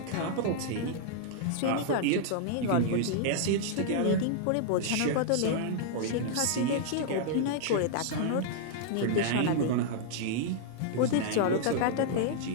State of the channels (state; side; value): different; both; correlation -0.01